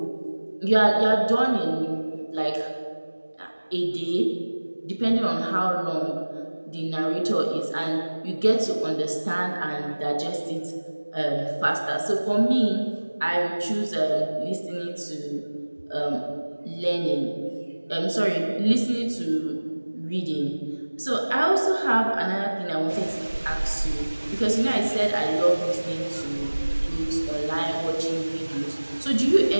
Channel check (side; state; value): both; inverted; correlation -1.00